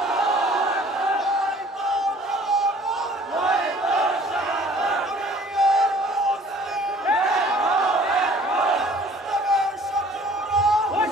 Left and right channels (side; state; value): both; normal; correlation 0.53